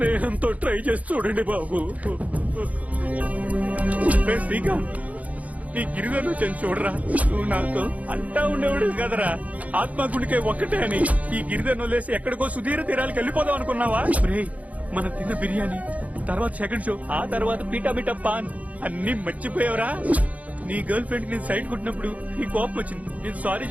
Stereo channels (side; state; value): left; late; 0.070 ms